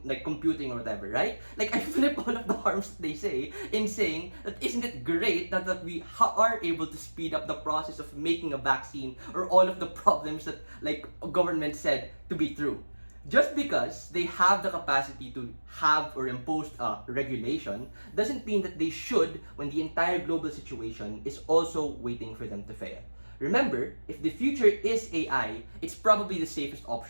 computing or whatever, right? I flip all of the harms that they say in saying that isn't it great that we are able to speed up the process of making a vaccine or all of the problems that government said to be true. Just because they have the capacity to have or impose a regulation doesn't mean that they should when the entire global situation is also waiting for them to fail. Remember, if the future is AI, it's probably the safest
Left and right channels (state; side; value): inverted; both; correlation -1.00